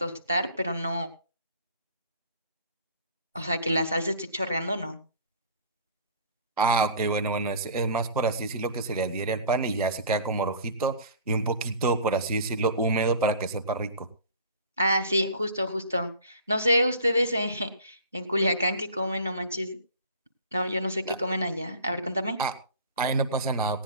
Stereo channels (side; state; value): both; inverted; correlation -0.44